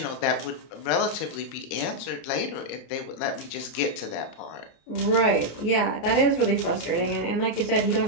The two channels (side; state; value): right; late; 29 ms